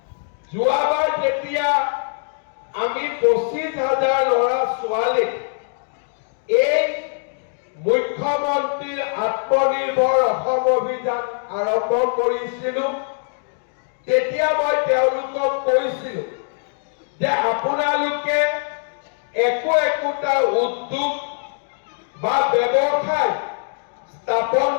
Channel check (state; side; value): silent; right; digital silence